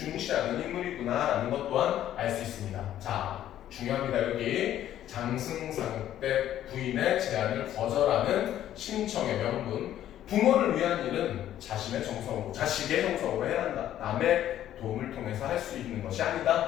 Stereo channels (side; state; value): right; quieter; 11.9 dB